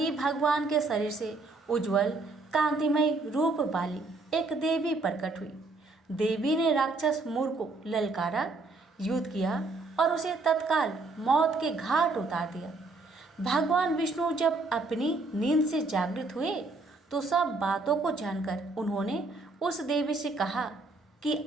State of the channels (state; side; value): quieter; left; 3.4 dB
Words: भगवान के शरीर से उज्जवल कांतिमय रूप वाली एक देवी प्रकट हुई। देवी ने राक्षस मूर को ललकारा, युद्ध किया और उसे तत्काल मौत के घाट उतार दिया। भगवान विष्णु जब अपनी नींद से जागृत हुए तो सब बातों को जानकर उन्होंने उस देवी से कहा कि